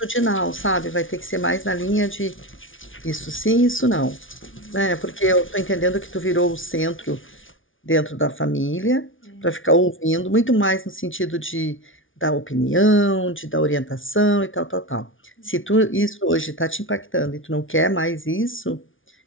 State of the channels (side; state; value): right; late; 0.57 ms